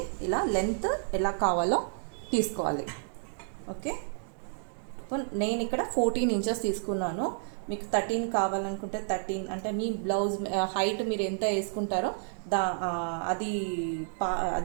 ఇలా లెంత్ ఎలా కావాలో తీసుకోవాలి. ఓకే, నేను ఇక్కడ 14 ఇంచెస్ తీసుకున్నాను. మీకు 13 కావాలనుకుంటే 13, అంటే మీ బ్లౌజ్ హైట్ మీరు ఎంత వేసుకుంటారో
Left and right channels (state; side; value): silent; left; digital silence